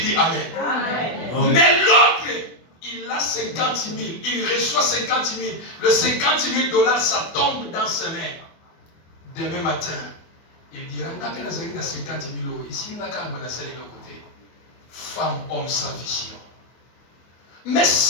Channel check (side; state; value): right; late; 24 ms